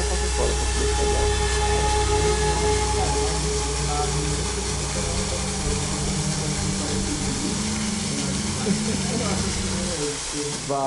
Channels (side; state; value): both; identical; correlation 1.00